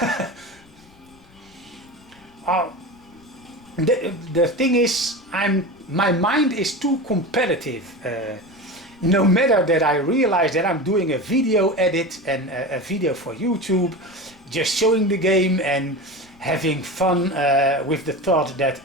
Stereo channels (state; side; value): noise; left; rumble, 28 dB below the sound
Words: The thing is, my mind is too competitive. No matter that I realize that I'm doing a video edit and a video for YouTube, just showing the game and having fun with the thought that